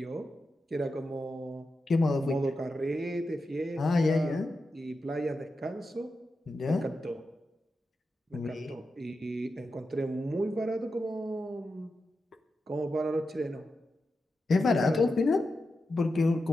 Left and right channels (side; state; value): both; normal; correlation 0.89